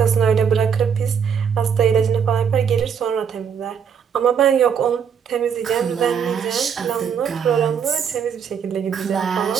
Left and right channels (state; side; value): quieter; left; 7.3 dB